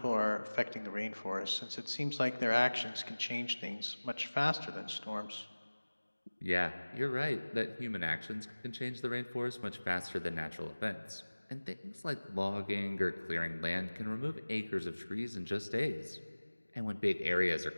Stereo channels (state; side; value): inverted; both; correlation -1.00